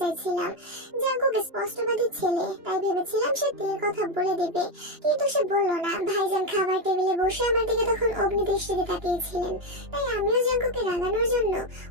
চাইছিলাম। জাঙ্কুক স্পষ্টবাদী ছেলে, তাই ভেবেছিলাম সে বিয়ের কথা বলে দেবে, কিন্তু সে বলল না। ভাইজান খাবার টেবিলে বসে আমার দিকে তখন অগ্নি দৃষ্টিতে তাকিয়েছিলেন, তাই আমিও জাঙ্কুককে রাগানোর জন্য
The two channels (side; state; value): left; late; 2.9 ms